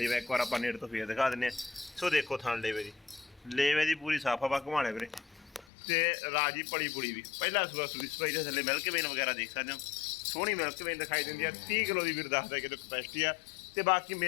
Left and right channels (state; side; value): drops out; right; at 5.7 s